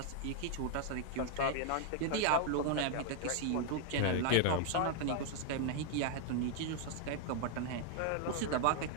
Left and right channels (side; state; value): both; different; correlation 0.00